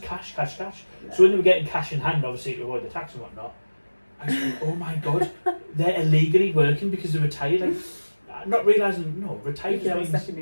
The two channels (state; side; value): inverted; both; correlation -1.00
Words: cash. Yeah. So when they were getting cash in hand, obviously to avoid the tax and whatnot, I was like, oh my God, they're illegally working because they're retired. Like, not realising, no, retired means second